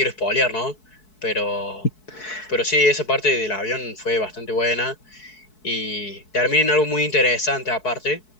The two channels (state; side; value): late; right; 4.7 ms